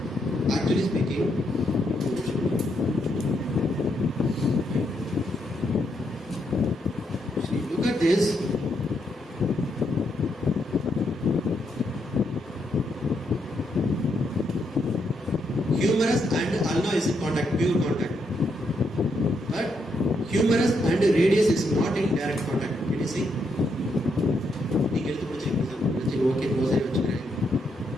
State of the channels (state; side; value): normal; both; correlation 0.78